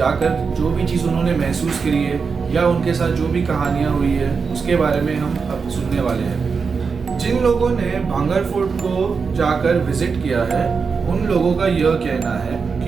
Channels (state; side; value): quieter; left; 5.3 dB